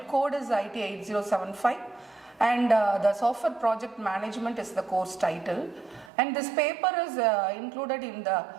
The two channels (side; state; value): left; drops out; at 6.1 s